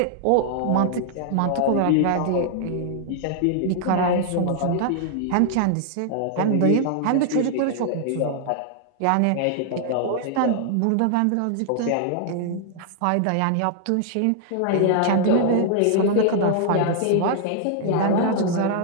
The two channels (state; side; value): different; both; correlation 0.00